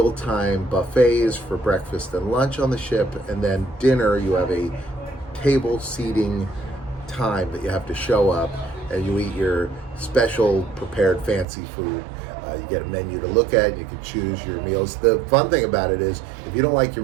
buffets for breakfast and lunch on the ship, and then dinner you have a table seating time that you have to show up, and you eat your special prepared fancy food. You get a menu to look at, and you can choose your meals. The fun thing about it is, if you don't like your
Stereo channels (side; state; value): left; drops out; at 11.5 s